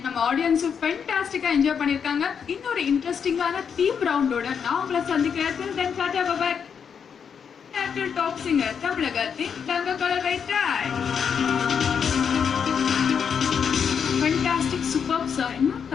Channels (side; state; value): right; quieter; 7.0 dB